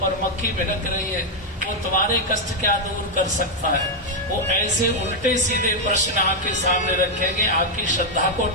मक्खी भिनक रही है, वो तुम्हारे कष्ट क्या दूर कर सकता है। वो ऐसे उल्टे सीधे प्रश्न आपके सामने रखेंगे, आपकी श्रद्धा को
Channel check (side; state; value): both; normal; correlation 0.00